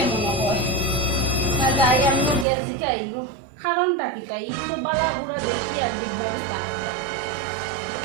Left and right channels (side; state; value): left; drops out; at 2.5 s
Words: মনে হয় না যাই আমি গ্যাস জিগাইবো কারণটা কি তাই তো বালা বুড়া দেখি আর দিগবা দিতা